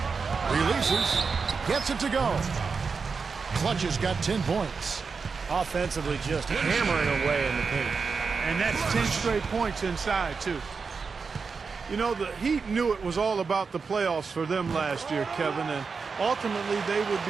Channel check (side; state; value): left; quieter; 5.1 dB